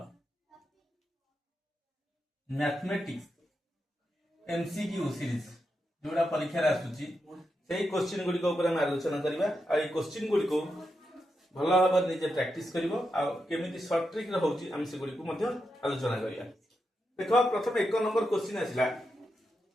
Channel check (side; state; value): both; normal; correlation 0.86